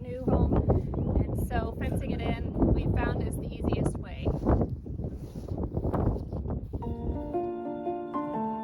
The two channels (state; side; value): identical; both; correlation 1.00